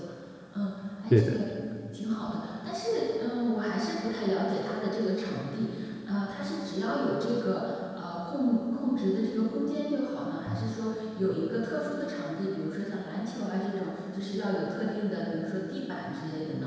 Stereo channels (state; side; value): identical; both; correlation 1.00